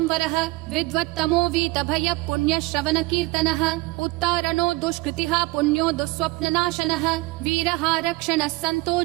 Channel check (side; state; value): left; quieter; 22.2 dB